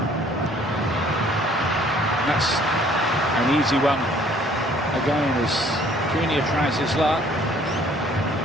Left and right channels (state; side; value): normal; both; correlation 0.58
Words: That's an easy one. Again, as Cunha tries his luck.